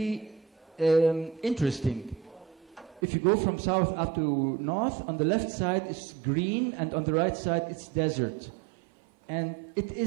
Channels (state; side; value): drops out; left; at 3.0 s